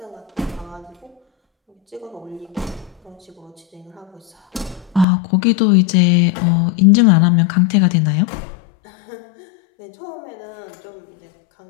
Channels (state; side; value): drops out; right; at 5.1 s